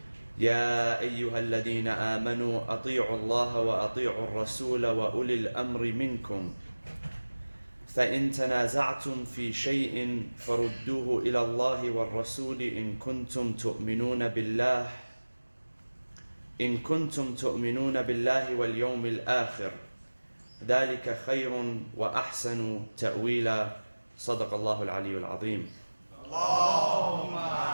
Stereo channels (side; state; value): both; inverted; correlation -1.00